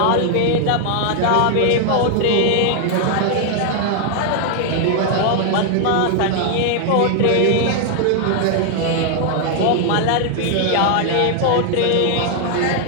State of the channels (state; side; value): different; both; correlation 0.00